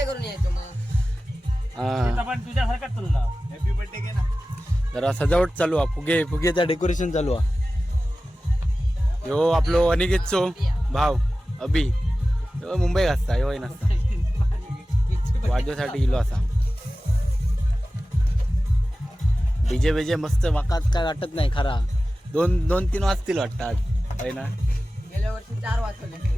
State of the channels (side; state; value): both; normal; correlation 0.95